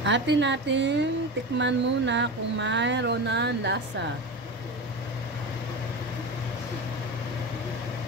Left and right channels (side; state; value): both; normal; correlation 0.25